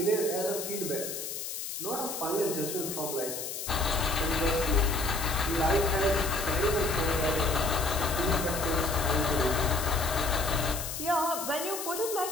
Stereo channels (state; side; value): noise; left; hiss, 6 dB below the sound